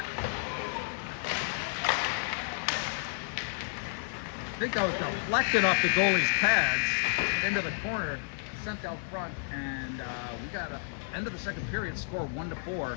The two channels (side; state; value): right; silent; digital silence